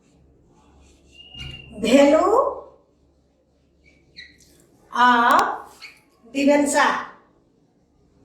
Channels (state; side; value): identical; both; correlation 1.00